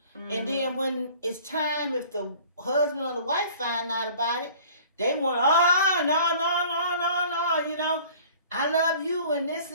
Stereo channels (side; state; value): both; inverted; correlation -0.48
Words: Mm-hmm. And then when it's time, if the husband or the wife find out about it, they want, no, you know, I love you and this